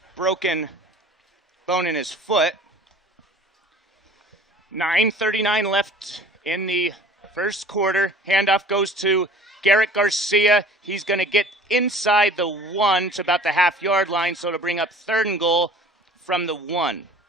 broken bone in his foot. 9:39 left in the first quarter. Handoff goes to Garrett Garcia. He's going to get inside the 1 to about the half-yard line, so to bring up 3rd and goal from the 1.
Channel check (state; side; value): normal; both; correlation 0.46